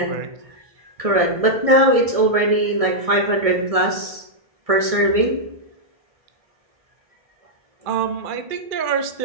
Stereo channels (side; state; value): left; late; 1.6 ms